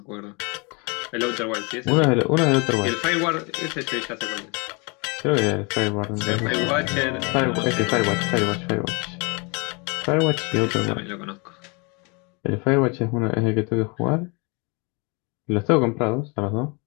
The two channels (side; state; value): right; quieter; 30.7 dB